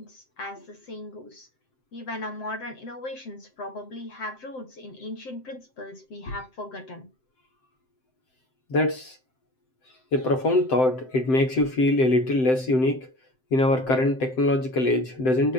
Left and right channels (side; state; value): right; late; 7.7 ms